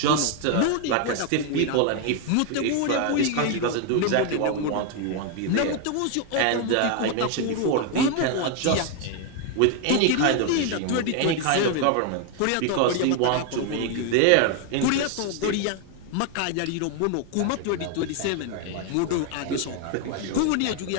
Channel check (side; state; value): both; different; correlation 0.01